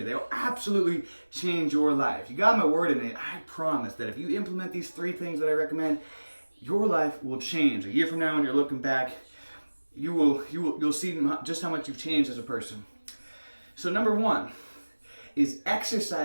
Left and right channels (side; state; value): both; inverted; correlation -1.00